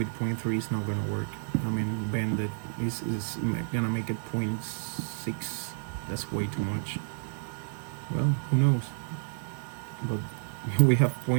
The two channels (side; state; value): left; silent; 58 dB below the other